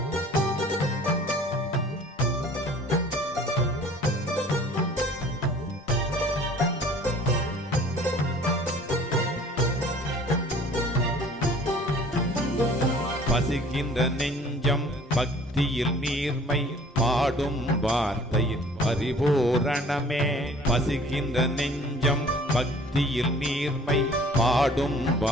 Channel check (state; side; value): normal; both; correlation 0.51